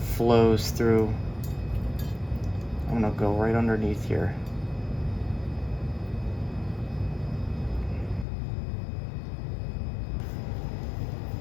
flows through. I'm gonna go right underneath here.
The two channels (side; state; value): right; drops out; at 8.2 s